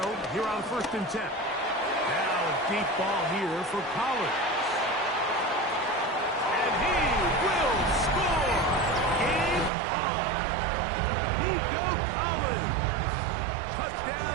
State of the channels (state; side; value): drops out; left; at 9.7 s